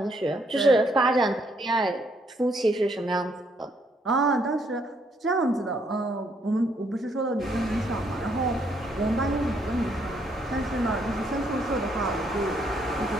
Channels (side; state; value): both; normal; correlation 0.71